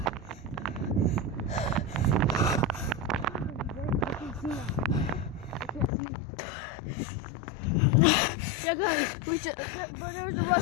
Yeah, guys, we should. But there was a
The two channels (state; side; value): drops out; right; at 5.9 s